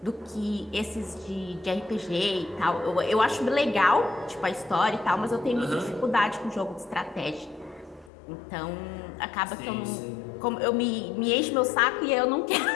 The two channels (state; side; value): drops out; right; at 8.1 s